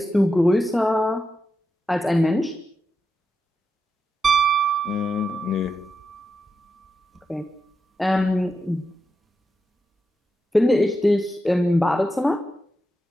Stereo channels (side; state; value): both; normal; correlation 0.88